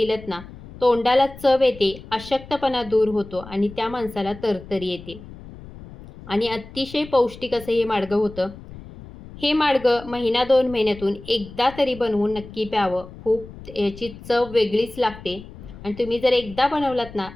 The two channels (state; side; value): noise; left; rumble, 16 dB below the sound